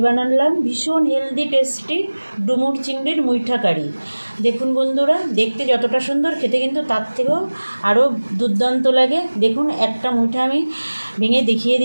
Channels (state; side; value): inverted; both; correlation -1.00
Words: বানালাম ভীষণ হেলদি টেস্টি ডুমুর চিংড়ির মুইঠা কারি। দেখুন বন্ধুরা, দেখতে যতটা সুন্দর খেতে কিন্তু তার থেকেও আরও দুর্দান্ত লাগে। দেখুন একটা মুইঠা আমি ভেঙে দেখিয়ে